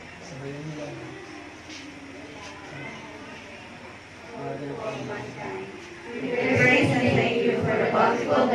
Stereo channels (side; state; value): both; identical; correlation 1.00